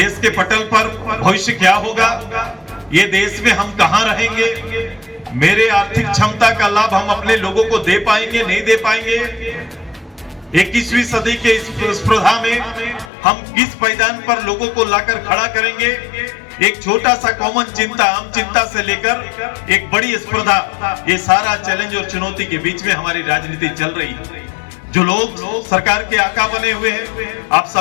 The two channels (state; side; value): drops out; right; at 13.1 s